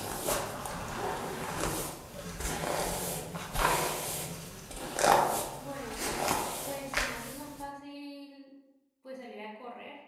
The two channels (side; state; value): both; identical; correlation 1.00